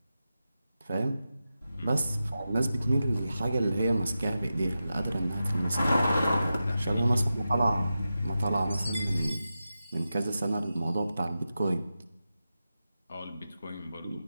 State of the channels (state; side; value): inverted; both; correlation -0.91